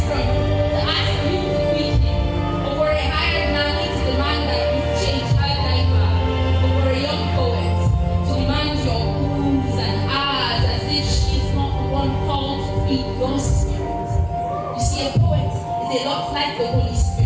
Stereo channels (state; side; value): identical; both; correlation 1.00